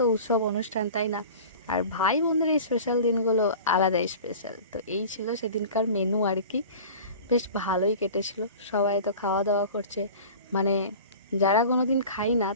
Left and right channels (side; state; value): both; inverted; correlation -0.39